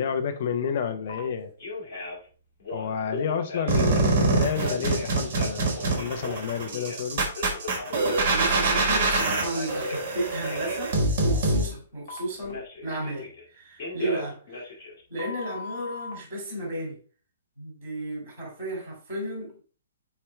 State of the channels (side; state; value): both; inverted; correlation -0.48